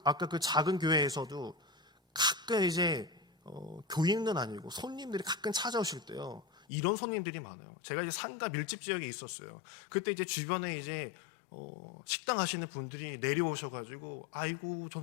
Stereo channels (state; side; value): drops out; right; at 6.7 s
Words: 그 작은 교회에서도 가끔 이제 교인은 아니고 손님들이 가끔 찾아오실 때요. 이런 손님들이 많아요. 제가 이제 상가 밀집 지역에 있었어요. 그때 이제 주변에 이제 식당 하시는 분들이 내려오셔가지고 아이고